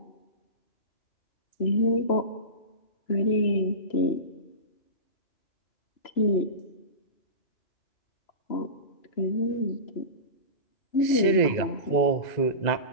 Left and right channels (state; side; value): late; right; 2.0 ms